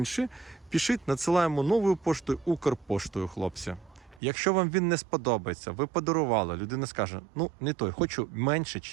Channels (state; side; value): drops out; left; at 4.2 s